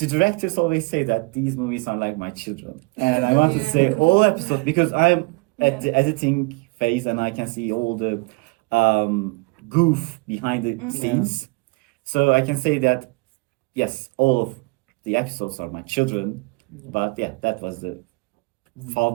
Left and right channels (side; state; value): left; quieter; 27.5 dB